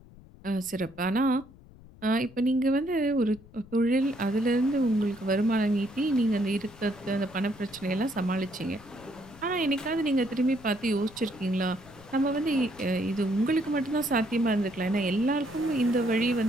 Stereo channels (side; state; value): left; noise; rumble, 22 dB below the sound